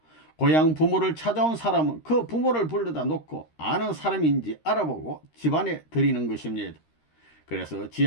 고향 부모를 찾아온 사람은 그 부모를 불러다 놓고 아는 사람인지 알아보고 집안에 들이는 것입니다. 그래서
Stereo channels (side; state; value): right; late; 13 ms